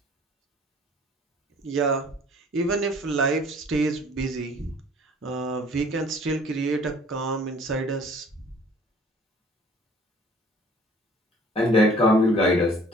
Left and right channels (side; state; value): both; normal; correlation 0.53